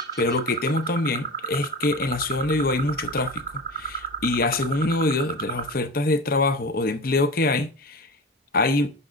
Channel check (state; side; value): normal; both; correlation 0.29